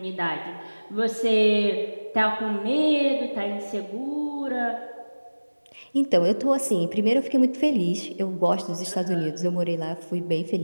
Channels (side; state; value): both; inverted; correlation -1.00